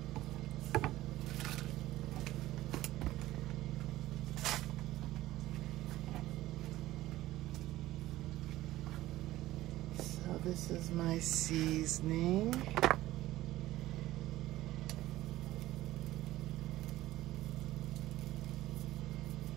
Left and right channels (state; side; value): quieter; left; 16.1 dB